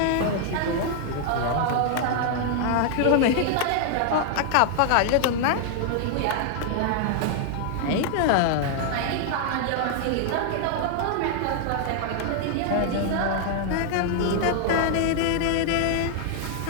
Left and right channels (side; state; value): both; different; correlation 0.00